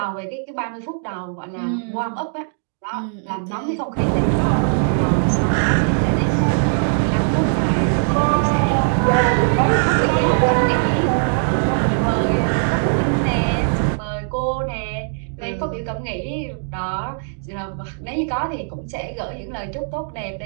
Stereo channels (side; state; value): left; silent; digital silence